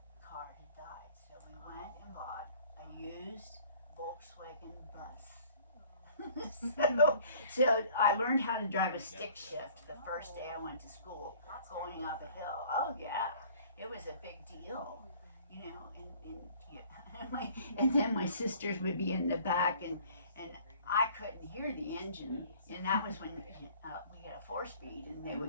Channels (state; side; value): inverted; both; correlation -0.52